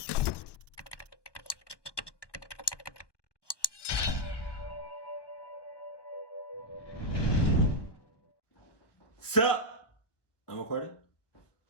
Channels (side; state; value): right; late; 1.1 ms